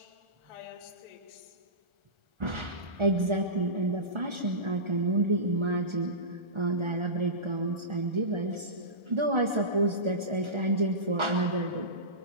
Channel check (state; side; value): late; left; 1.4 ms